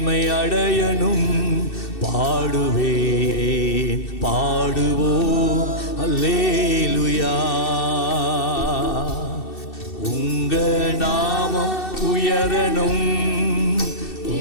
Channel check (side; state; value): right; late; 2.6 ms